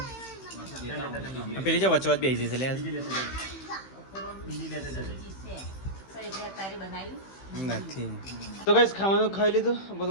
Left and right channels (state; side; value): late; right; 15 ms